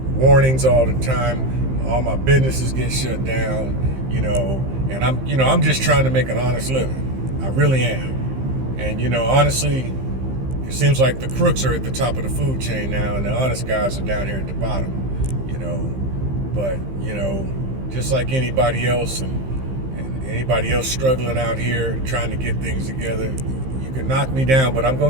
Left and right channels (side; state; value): left; late; 15 ms